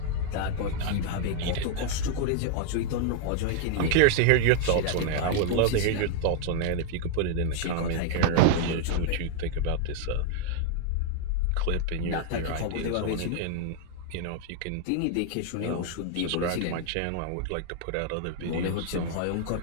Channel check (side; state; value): both; different; correlation 0.00